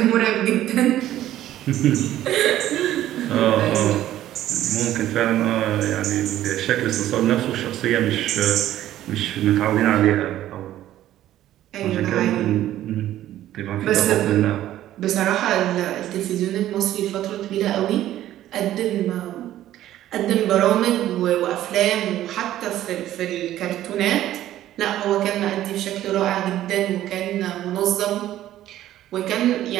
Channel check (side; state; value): left; quieter; 13.1 dB